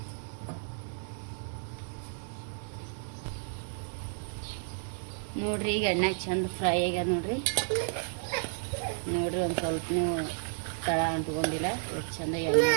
ನೋಡ್ರಿ, ಈಗ ಎಣ್ಣೆ ಚಂದ ಫ್ರೈ ಆಗ್ಯದ ನೋಡ್ರಿ. ನೋಡ್ರಿ, ಒಂದು ಸ್ವಲ್ಪ ನೀವು ತಳ ಅಂಟ್ಕೊಂಡಿಲ್ಲ, ಎಷ್ಟು ಚಂದ ಎಣ್ಣೆ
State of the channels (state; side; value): silent; left; digital silence